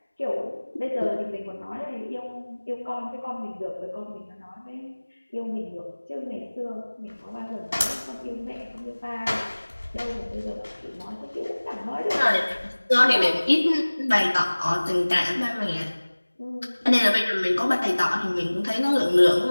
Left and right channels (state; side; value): inverted; both; correlation -1.00